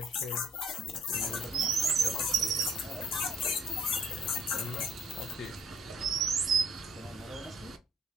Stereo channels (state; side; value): normal; both; correlation 0.62